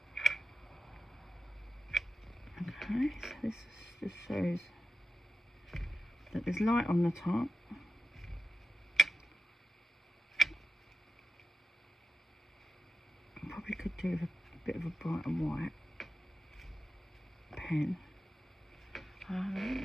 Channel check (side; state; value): both; normal; correlation 0.90